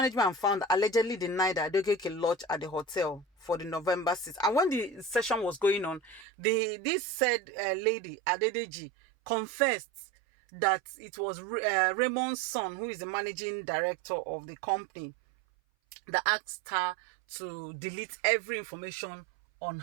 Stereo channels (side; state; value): left; drops out; at 6.2 s